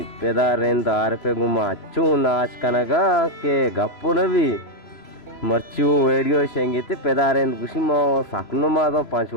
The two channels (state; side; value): late; right; 3.0 ms